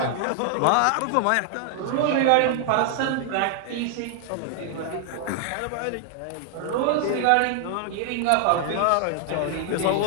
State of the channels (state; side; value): different; both; correlation 0.00